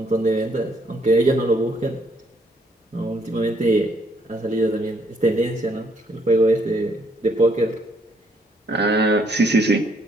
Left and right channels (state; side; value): normal; both; correlation 0.69